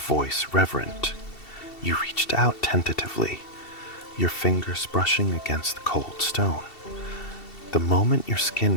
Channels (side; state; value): right; late; 2.7 ms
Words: reverent. You reached out tentatively, your fingers brushing against the cold stone. The moment your